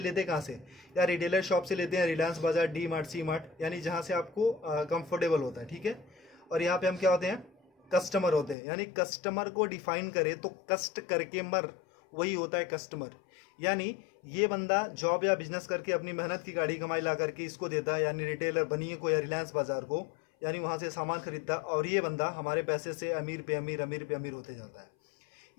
कहाँ से? या रिटेलर शॉप से लेते हैं, रिलायंस बाजार, डी मार्ट, सी मार्ट, यानी जहाँ से आपको कंफर्टेबल होता है। ठीक है। और यहाँ पे हम क्या होते हैं? कस्टमर होते हैं। यानी कस्टमर को डिफाइन करें तो कष्ट करके मर, वही होता है कस्टमर। यानी ये बंदा जॉब या बिजनेस करके अपनी मेहनत की गाड़ी कमाई ला करके इसको देता है, यानी रिटेलर बनिए को या रिलायंस बाजार को, यानी वहाँ से सामान खरीदता है, और ये बंदा हमारे पैसे से अमीर पे अमीर, अमीर पे अमीर होते जाता है।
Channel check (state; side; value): drops out; right; at 8.6 s